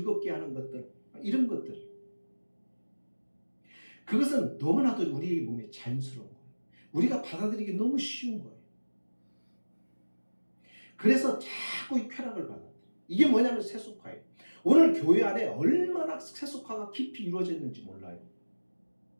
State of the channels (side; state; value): both; inverted; correlation -1.00